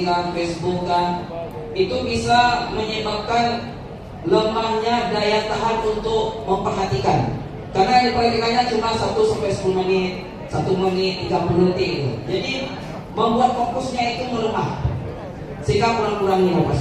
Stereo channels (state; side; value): identical; both; correlation 1.00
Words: kan, Facebook kan, itu bisa menyebabkan lemahnya daya tahan untuk memperhatikan. Karena yang diperhatikannya cuma 1-10 menit, 1 menit, 30 detik itu. Jadi membuat fokusnya itu melemah. Sehingga kurang-kurangi apa